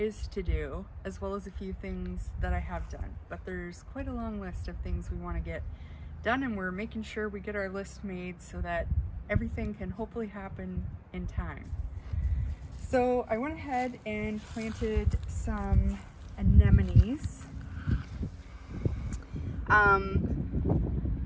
to do, as well as a few things that I have done. But there's quite a long list of things we want to get done, and we're making sure we get our list made so that everything can hopefully happen in time. So I went ahead and planted some anemones.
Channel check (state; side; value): identical; both; correlation 1.00